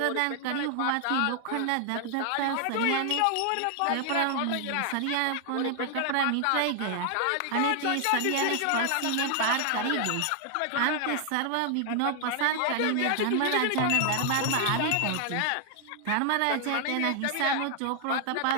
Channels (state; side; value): different; both; correlation 0.00